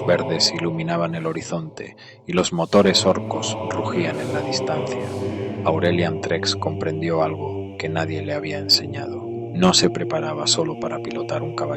verdes iluminaban el horizonte y los motores orcos rugían en la distancia, Aurelian Trex comprendió algo que nadie le había enseñado. No se preparaba solo para pilotar un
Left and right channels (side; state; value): both; identical; correlation 1.00